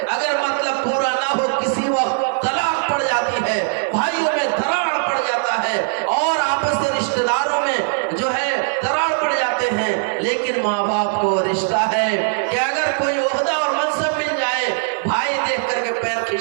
اگر مطلب پورا نہ ہو کسی وقت طلاق پڑ جاتی ہے، بھائیوں میں دراڑ پڑ جاتا ہے اور آپس کے رشتہ داروں میں جو ہے دراڑ پڑ جاتے ہیں۔ لیکن ماں باپ کو رشتہ ہے کہ اگر کوئی عہدہ اور منصب مل جائے، بھائی دیکھ کر کے پیر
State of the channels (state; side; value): silent; left; digital silence